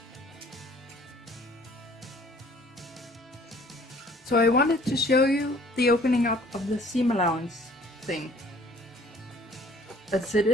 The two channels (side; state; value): both; normal; correlation 0.55